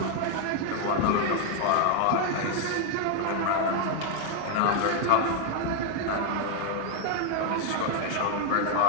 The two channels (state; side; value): different; both; correlation 0.01